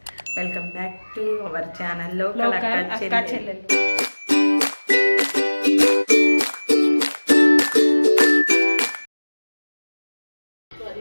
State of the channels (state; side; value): inverted; both; correlation -1.00